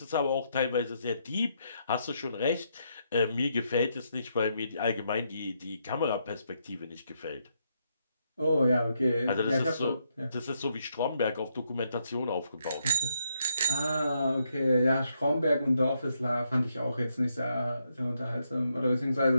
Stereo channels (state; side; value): inverted; both; correlation -0.77